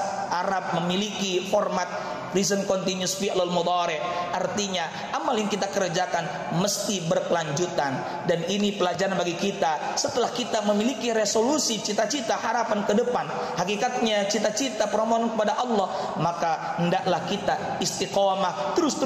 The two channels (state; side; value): identical; both; correlation 1.00